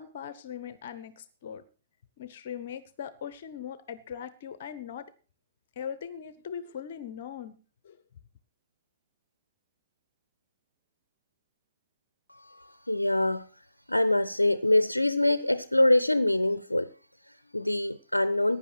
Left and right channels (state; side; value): inverted; both; correlation -0.97